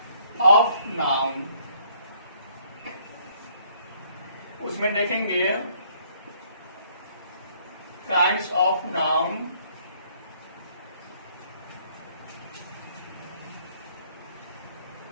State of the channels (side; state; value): both; inverted; correlation -0.64